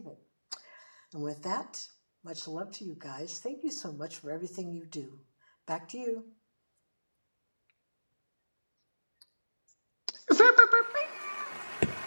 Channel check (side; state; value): both; inverted; correlation -1.00